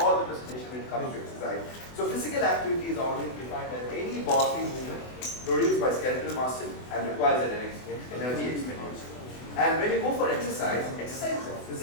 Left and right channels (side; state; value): right; late; 24 ms